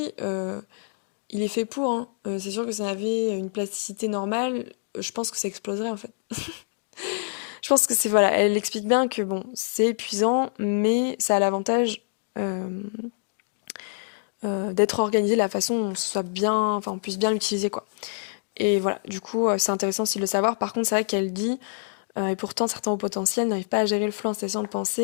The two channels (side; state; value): right; silent; digital silence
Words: il est fait pour, hein. C'est sûr que ça avait une plasticité normale, je pense que ça exploserait en fait. Je pense que c'est, voilà, elle explique bien que bon, c'est épuisant, mais ça a l'avantage euh, d'être organisé de la façon où on puisse bien l'utiliser, quoi. Et voilà, du coup, c'est intéressant aussi de le savoir. Par contre, c'est vrai qu'elle dit, et pourtant certains hauts potentiels n'arrivent pas à gérer le flot incessant de